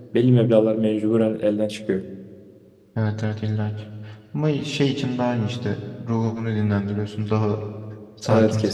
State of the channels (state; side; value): identical; both; correlation 1.00